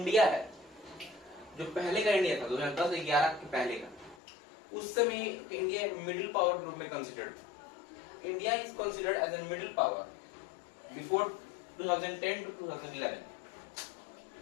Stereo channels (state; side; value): drops out; right; at 4.2 s